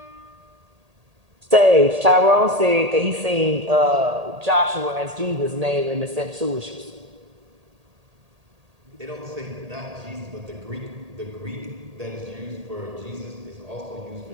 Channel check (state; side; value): late; left; 1.8 ms